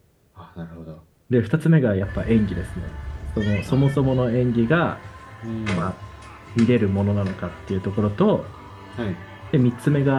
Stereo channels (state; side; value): identical; both; correlation 1.00